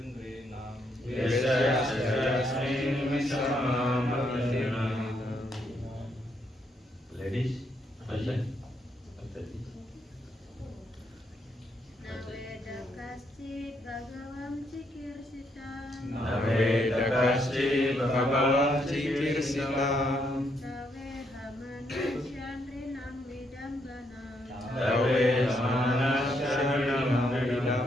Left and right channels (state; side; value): normal; both; correlation 0.75